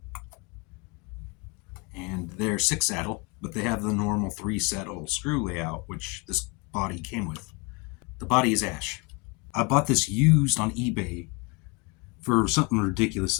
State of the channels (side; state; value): right; quieter; 29.0 dB